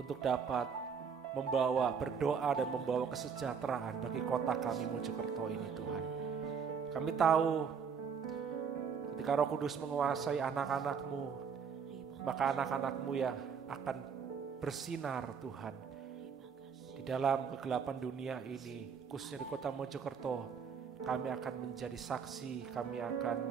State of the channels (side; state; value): left; quieter; 6.5 dB